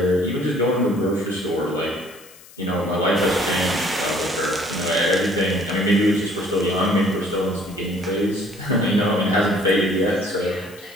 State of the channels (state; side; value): noise; left; hiss, 22 dB below the sound